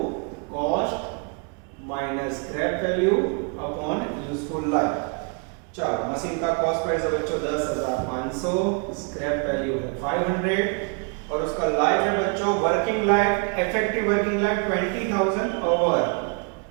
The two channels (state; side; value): quieter; left; 36.5 dB